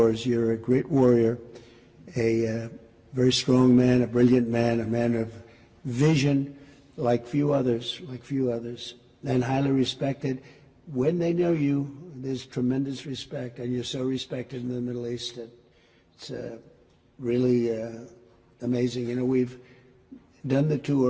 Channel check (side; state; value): both; identical; correlation 1.00